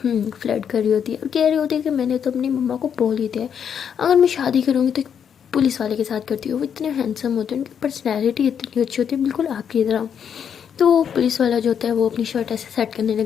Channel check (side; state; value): right; quieter; 7.9 dB